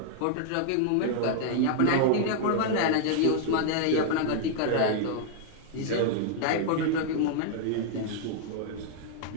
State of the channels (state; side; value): different; both; correlation -0.01